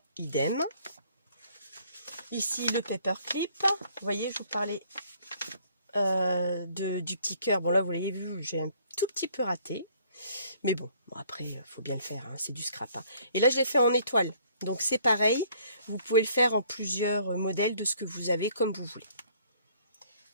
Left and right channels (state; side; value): inverted; both; correlation -0.60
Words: idem. Ici le paperclip. Vous voyez, je vous parlais du petit cœur. Bon là vous l'avez vu, j'ai un tout petit peu raté. Mais bon, après, il faut bien le faire, hein, c'est du scrap. Hein. Et là, je l'ai fait en étoile. Donc, c'est pareil. Vous pouvez le faire en plusieurs modèles de ce que vous avez, comme vous voulez.